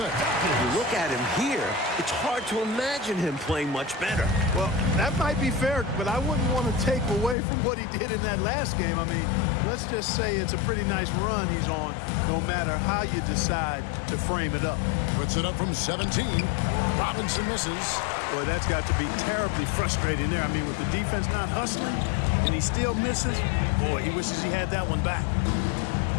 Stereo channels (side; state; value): right; drops out; at 7.4 s